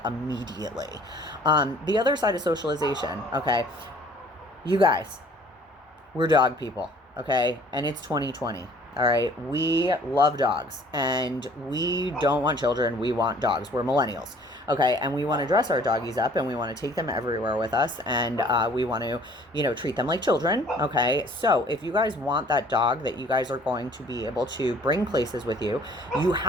immediately. The other side of socialization, okay? You guys, we're dog people, okay? And it's 2020. All right, we love dogs, and we don't want children. We want dogs. We're millennials, okay? And we want to dress our doggies up, and we want to take them everywhere with us, and we want to, you know, treat them like children, okay? So if you guys want that dog that you guys are going to be able to bring places with you, you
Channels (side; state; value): both; normal; correlation 0.54